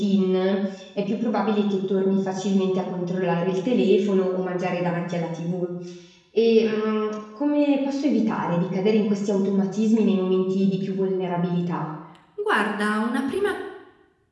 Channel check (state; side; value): identical; both; correlation 1.00